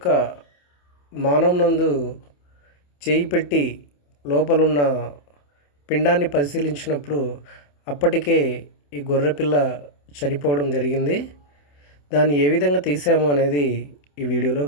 మానం నందు చేయి పెట్టి లోపలున్న పిండాన్ని పరిశీలించినప్పుడు అప్పటికే ఈ గొర్రె పిల్ల చనిపోవడం జరిగింది. దాన్ని ఏ విధంగా తీసాము అనేది ఈ వీడియోలో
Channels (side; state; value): right; late; 28 ms